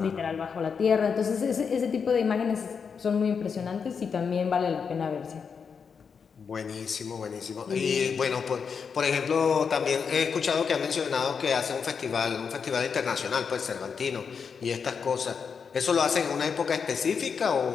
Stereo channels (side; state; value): right; quieter; 6.1 dB